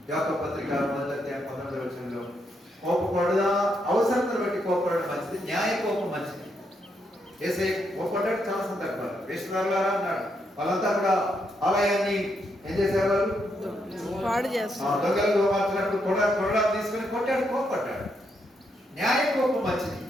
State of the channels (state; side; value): normal; both; correlation 0.79